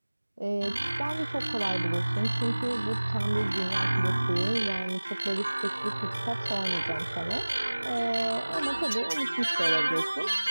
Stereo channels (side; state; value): both; inverted; correlation -1.00